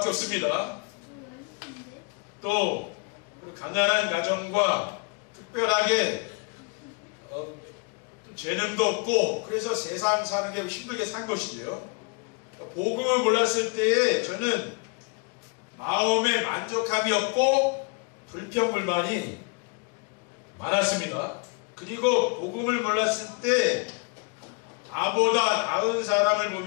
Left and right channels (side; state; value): right; quieter; 33.0 dB